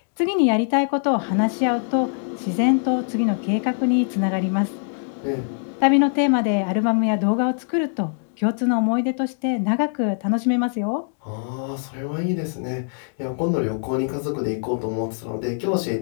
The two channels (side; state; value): right; silent; 64 dB below the other